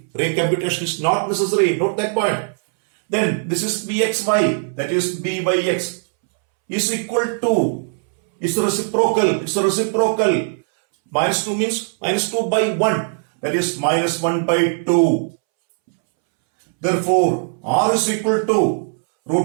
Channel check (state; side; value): silent; left; 66 dB below the other